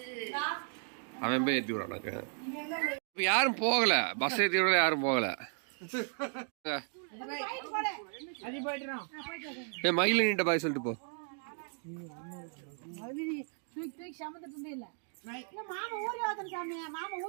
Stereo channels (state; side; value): silent; left; 55 dB below the other